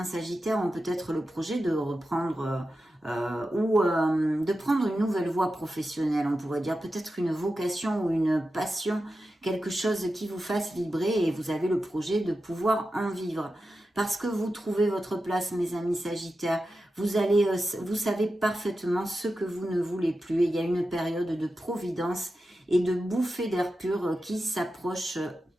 sagittaires ont peut-être le projet de reprendre de prendre une nouvelle voie professionnelle, on pourrait dire peut-être une vocation ou une passion, quelque chose qui vous fasse vibrer et vous avez le projet de pouvoir en vivre. Parce que vous trouvez votre place, mes amis sagittaires, vous savez parfaitement ce que vous ne voulez plus et il y a une période de providence et de bouffée d'air pur qui s'approche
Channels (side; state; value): both; normal; correlation 0.91